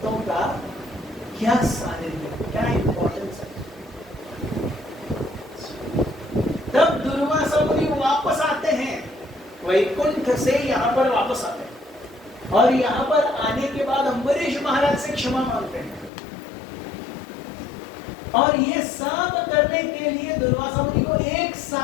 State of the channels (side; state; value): right; drops out; at 16.1 s